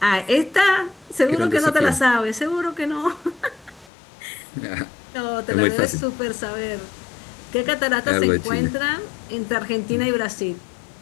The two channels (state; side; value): drops out; right; at 3.9 s